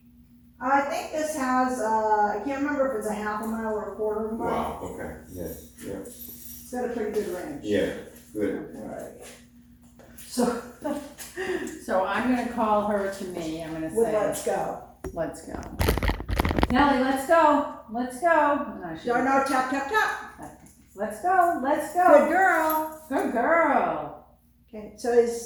I think this has, I can't remember if it's a half a mile or a quarter of a mile. Wow, okay, yeah, It's got a pretty good range. yeah, good. Alright. So, so I'm gonna call her to me, I'm gonna with say, let's go. let's go. Nellie, let's go, let's go. No, tap, tap, tap. Let's go, let's Good go. girl. Good girl. Okay, so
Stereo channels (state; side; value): identical; both; correlation 1.00